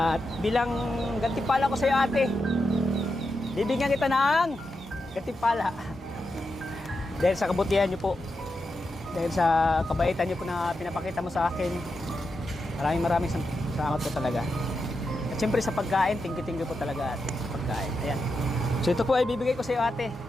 bilang gantimpala ko sa iyo, ate, bibigyan kita ng gantimpala. Dahil sa kabutihan niyo po, dahil sa kabaitan niyo po na pinapakita mo sa akin, maraming salamat po talaga. At siyempre sa pagkain, thank you po talaga, ate, sa pagkain. Ayan. So ito po ay bibigay ko sa iyo, ate.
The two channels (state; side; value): normal; both; correlation 0.87